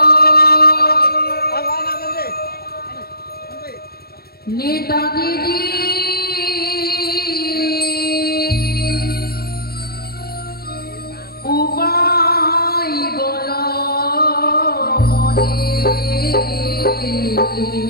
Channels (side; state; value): right; late; 0.45 ms